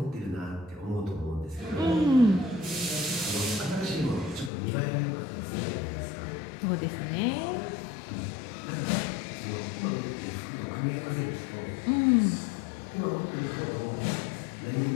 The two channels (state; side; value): drops out; right; at 4.5 s